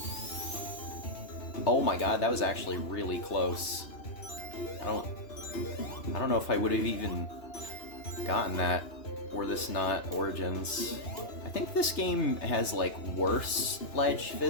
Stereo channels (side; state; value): right; late; 2.9 ms